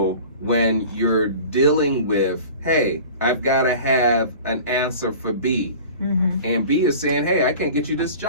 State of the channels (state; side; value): inverted; both; correlation -0.41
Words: when you're dealing with, hey, I've got to have an answer for B. And B is saying, hey, I can't get you this